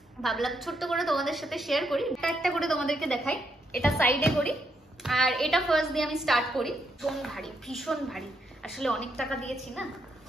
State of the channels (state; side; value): normal; both; correlation 0.78